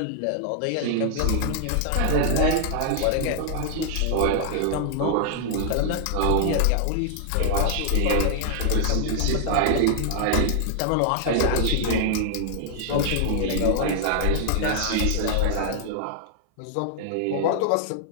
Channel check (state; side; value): different; both; correlation 0.00